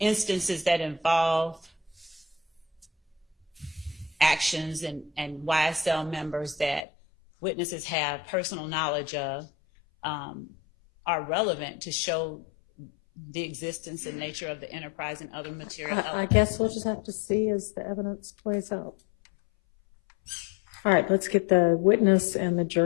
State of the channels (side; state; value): right; drops out; at 6.9 s